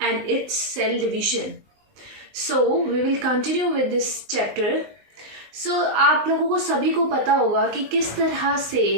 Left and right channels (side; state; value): left; late; 19 ms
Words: and its cell division. So we will continue with this chapter. आप लोगों को सभी को पता होगा कि किस तरह